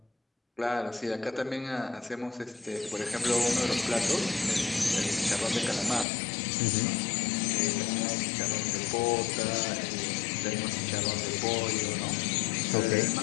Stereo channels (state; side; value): drops out; right; at 6.1 s